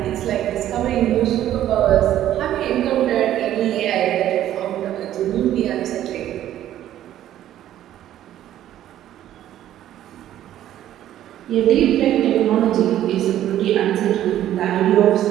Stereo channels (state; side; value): quieter; left; 12.2 dB